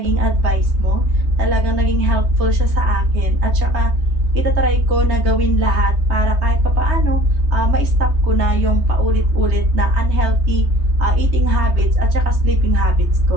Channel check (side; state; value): left; late; 3.2 ms